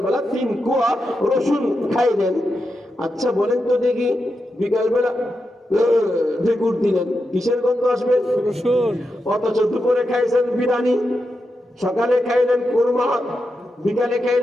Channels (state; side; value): normal; both; correlation 0.87